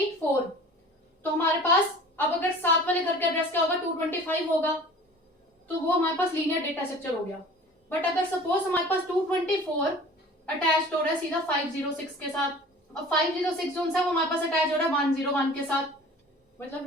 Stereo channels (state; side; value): normal; both; correlation 0.44